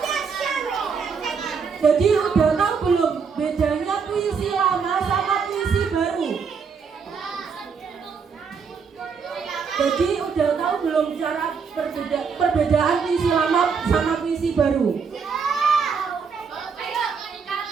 Jadi udah tahu belum bedanya puisi lama sama puisi baru? antara perbedaan puisi lama sama puisi baru?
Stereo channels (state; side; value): quieter; left; 5.8 dB